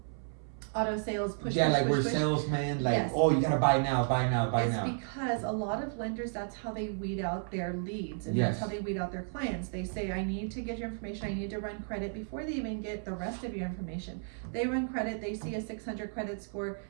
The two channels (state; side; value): silent; left; 56 dB below the other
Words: auto sales push. We're salesmen, like, oh, you gotta buy now. It's because a lot of lenders, that's how they weed out their leads, and that's how they weed out their clients. They say, I need to get your information, I need to run credit, before they even get the rest of your information. They run credit, they see a 600 credit score,